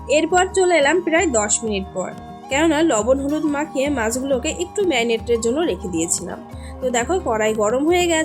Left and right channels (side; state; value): both; identical; correlation 1.00